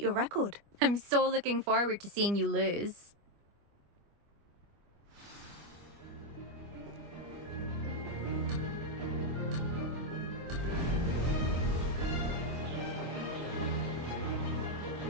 your record. I'm so looking forward to seeing you lose.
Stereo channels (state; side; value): late; left; 25 ms